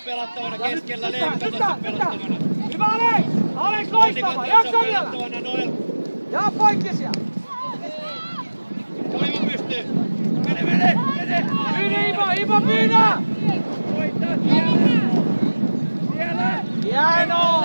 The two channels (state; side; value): inverted; both; correlation -1.00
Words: pelattavana keskellä, Leevi katsot pelattavana. Hyvä Alex! Alex Onni loistava! katsot Jaksa vielä! pelattavana, Noel. Ja poikki siellä! Oiva pystyy. Mene! Ivo pyydä! Voittaa siellä! Hienoa!